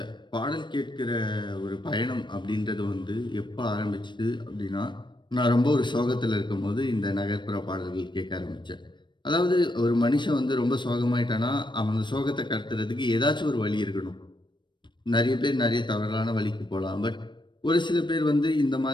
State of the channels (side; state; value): right; late; 0.22 ms